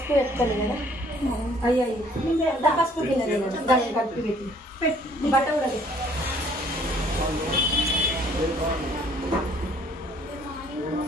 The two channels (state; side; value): normal; both; correlation 0.59